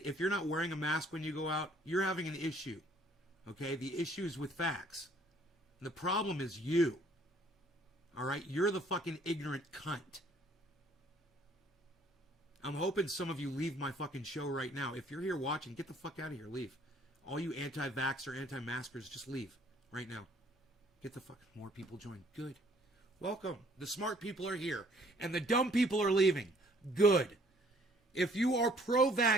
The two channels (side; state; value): both; normal; correlation 0.60